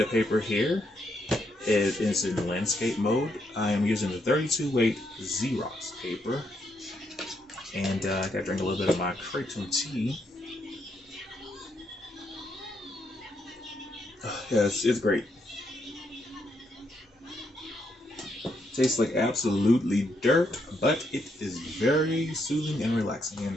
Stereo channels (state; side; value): normal; both; correlation 0.77